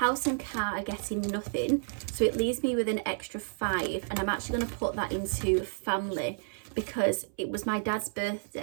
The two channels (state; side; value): silent; left; 57 dB below the other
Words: and car are getting nothing, so it leaves me with an extra 5, and I'm actually going to put that into family, because it was my dad's